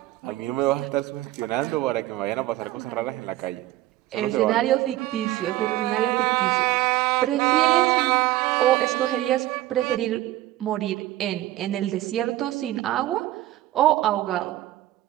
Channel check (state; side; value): quieter; left; 15.6 dB